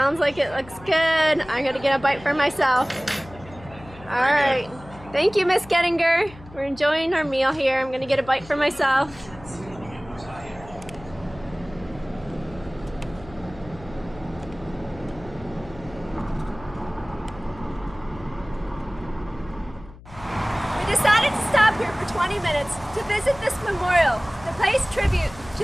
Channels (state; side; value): noise; left; hum, 19 dB below the sound